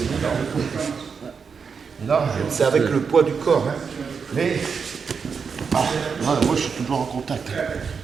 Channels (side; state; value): left; quieter; 5.9 dB